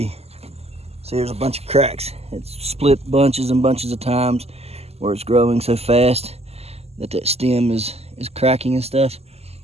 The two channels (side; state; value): left; late; 0.30 ms